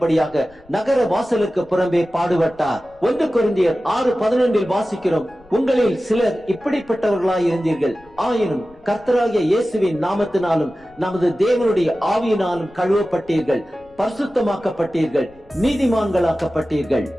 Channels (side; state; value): left; noise; rumble, 28 dB below the sound